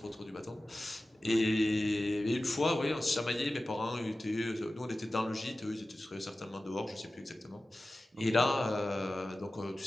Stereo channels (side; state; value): both; normal; correlation 0.95